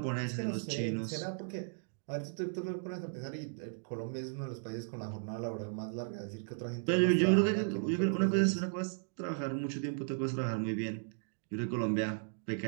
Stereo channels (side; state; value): left; silent; digital silence